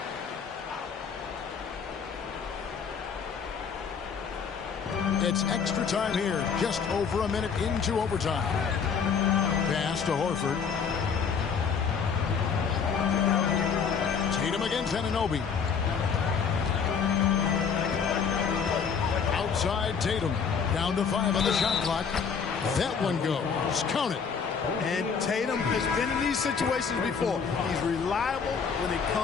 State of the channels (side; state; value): right; quieter; 6.3 dB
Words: It's extra time here, just over a minute into overtime. Pass to Horford. Tatum against Anunoby. Outside Tatum. Down to 5 on the shot clock. That one goes. Count it. And Tatum has been in these situations before. He's reliable when it